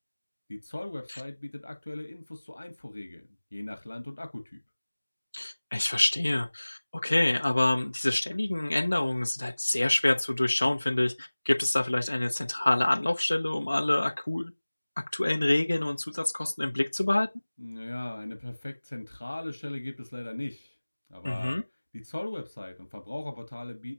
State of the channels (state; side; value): inverted; both; correlation -1.00